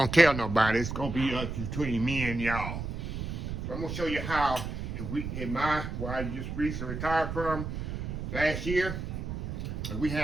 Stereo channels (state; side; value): noise; right; rumble, 5 dB below the sound